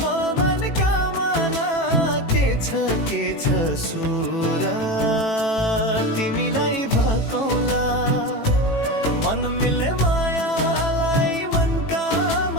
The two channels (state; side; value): late; right; 18 ms